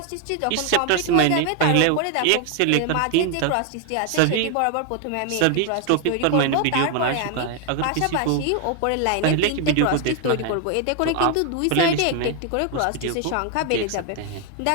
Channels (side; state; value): both; different; correlation 0.00